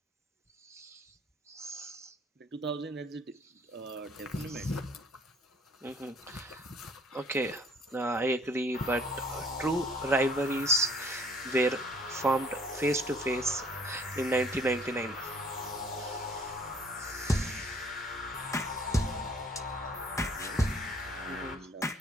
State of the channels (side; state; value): both; normal; correlation 0.57